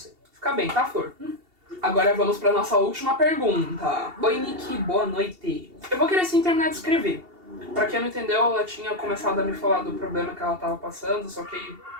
Fica bem, tá, Flor? Agora vamos pra nossa última pergunta. Oi, Nick, boa noite. Eu vou querer sim terminar de escrever. Pra quem não entendeu, ela tinha começado a me falar do problema que ela tava passando, só que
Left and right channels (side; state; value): left; late; 2.7 ms